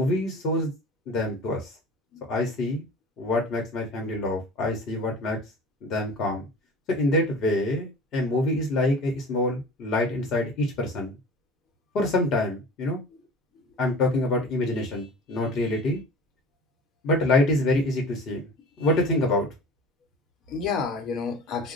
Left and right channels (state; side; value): normal; both; correlation 0.39